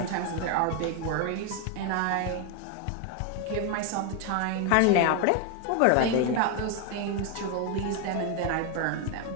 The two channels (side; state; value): both; different; correlation 0.01